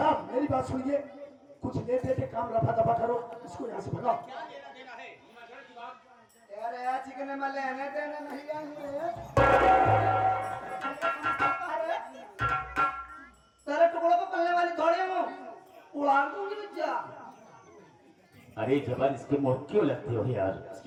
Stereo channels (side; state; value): both; identical; correlation 1.00